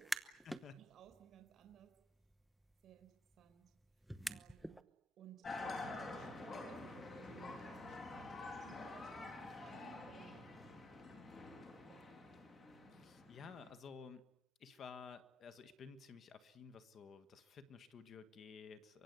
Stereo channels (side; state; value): both; normal; correlation 0.82